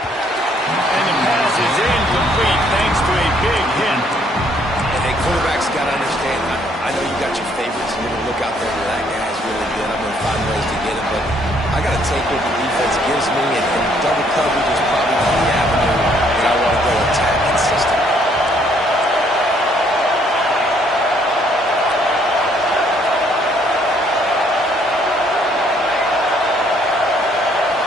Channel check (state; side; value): normal; both; correlation 0.66